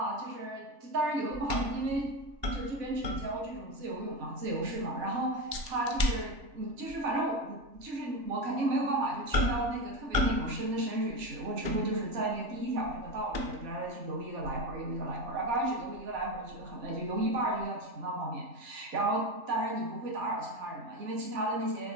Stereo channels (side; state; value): left; late; 3.4 ms